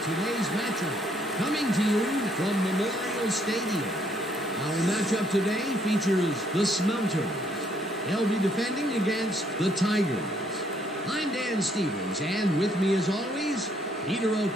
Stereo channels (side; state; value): both; normal; correlation 0.69